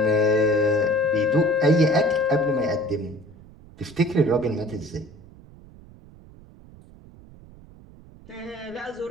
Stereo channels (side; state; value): right; noise; rumble, 22 dB below the sound